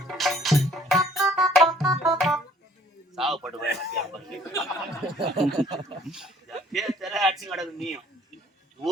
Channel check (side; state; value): both; normal; correlation 0.58